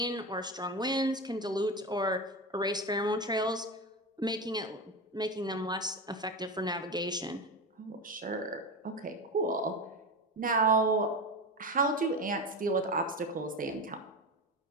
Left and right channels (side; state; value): both; normal; correlation 0.21